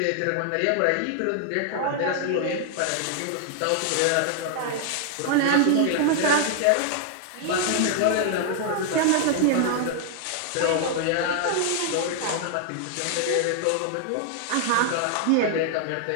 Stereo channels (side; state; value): both; different; correlation 0.00